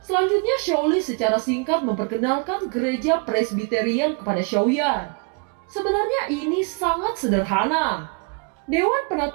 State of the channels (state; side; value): quieter; left; 33.8 dB